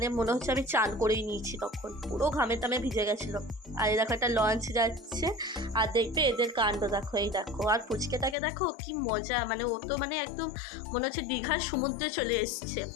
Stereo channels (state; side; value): drops out; right; at 8.3 s